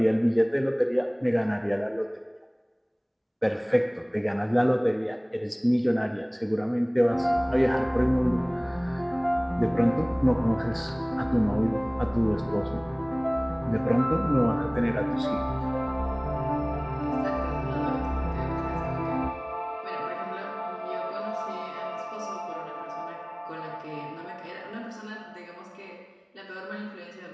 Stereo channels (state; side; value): identical; both; correlation 1.00